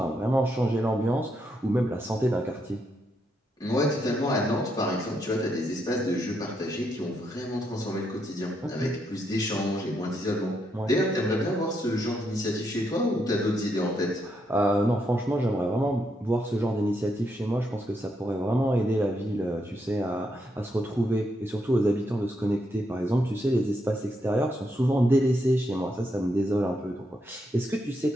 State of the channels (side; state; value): both; normal; correlation 0.79